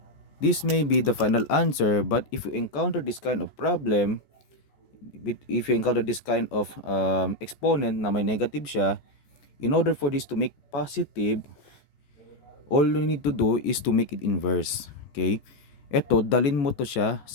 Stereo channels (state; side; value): late; right; 14 ms